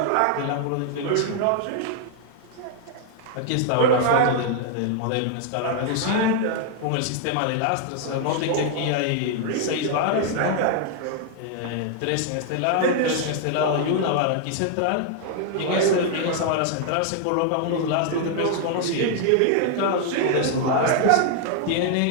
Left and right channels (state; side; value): different; both; correlation 0.00